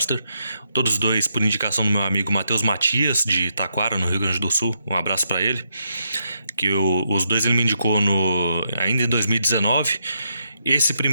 todos dois por indicação do meu amigo Matheus Matias, de Taquara, no Rio Grande do Sul. Um abraço para ele. Os dois ele me indicou ainda em 2019. Esse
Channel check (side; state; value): both; inverted; correlation -0.80